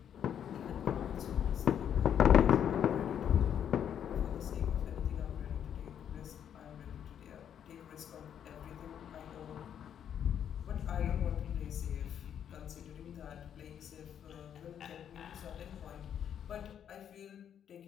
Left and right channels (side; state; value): right; quieter; 9.1 dB